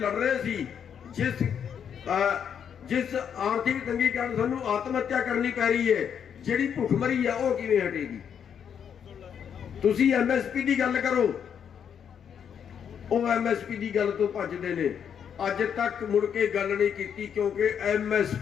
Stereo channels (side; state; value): right; quieter; 8.0 dB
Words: रहे सी, जिस आर्थिक तंगी कारण सानू आत्म हत्या करनी पै रही है, जिहड़ी भुखमरी है वो किवें हटेगी? तुसी एमएसपी की गल करो, वो एमएसपी की गल तो भजदे ने। अज तक मुड़ के गल नहीं की क्योंकि